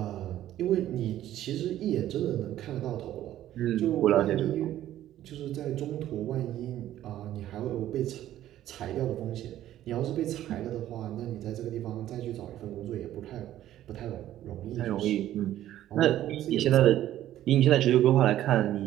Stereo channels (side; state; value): left; quieter; 12.9 dB